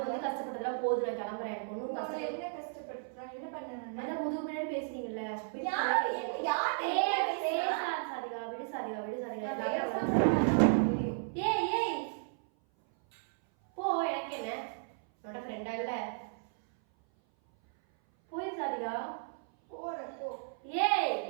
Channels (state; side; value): silent; left; 55 dB below the other